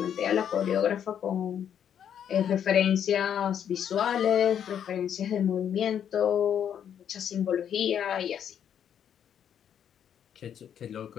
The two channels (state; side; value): quieter; right; 8.9 dB